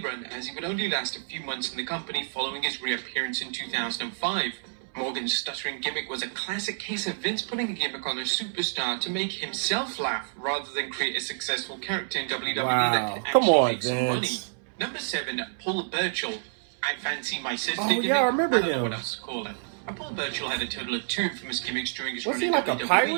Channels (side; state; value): left; silent; 59 dB below the other